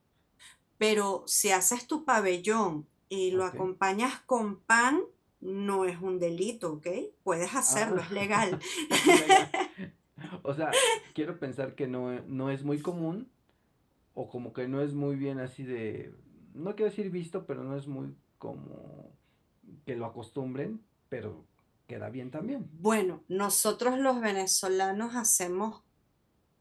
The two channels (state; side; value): identical; both; correlation 1.00